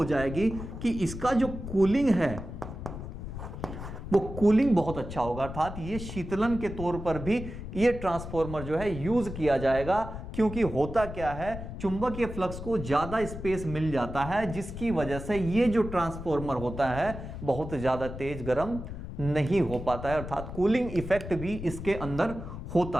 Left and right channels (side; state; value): left; noise; rumble, 9 dB below the sound